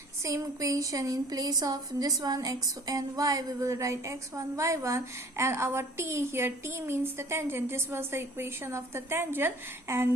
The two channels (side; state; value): both; normal; correlation 0.52